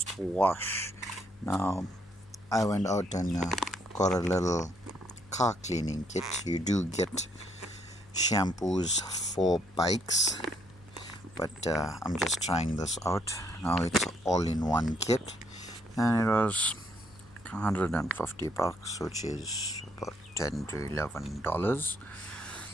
wash. Now, I went out and got a little car cleaning kit. You do get shampoos for bikes, but I'm just trying this out. Now it's all in one kit, and it was $150, which is about $10 to $11.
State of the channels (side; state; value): left; noise; hum, 25 dB below the sound